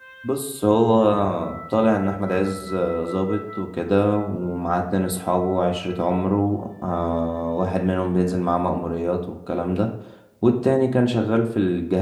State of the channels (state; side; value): identical; both; correlation 1.00